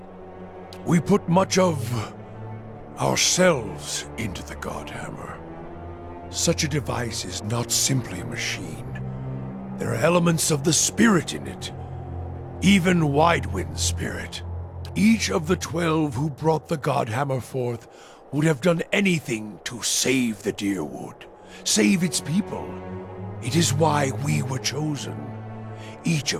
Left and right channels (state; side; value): identical; both; correlation 1.00